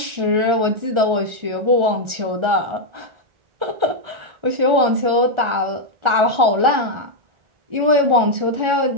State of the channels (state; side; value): late; left; 1.4 ms